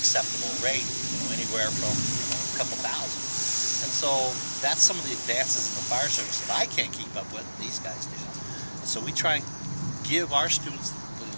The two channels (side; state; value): both; inverted; correlation -1.00